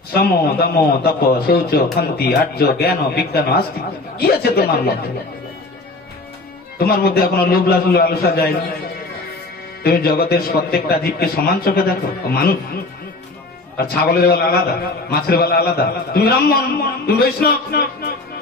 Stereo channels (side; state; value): right; quieter; 3.1 dB